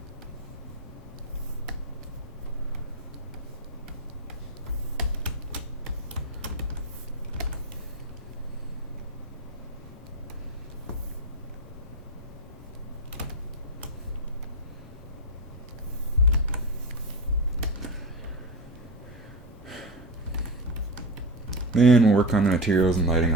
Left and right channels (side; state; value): both; normal; correlation 0.19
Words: Then we'll work on the materials and lighting